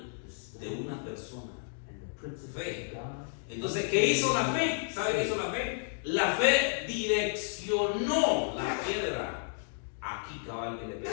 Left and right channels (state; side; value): silent; right; digital silence